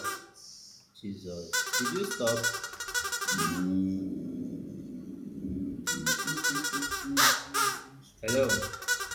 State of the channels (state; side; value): identical; both; correlation 1.00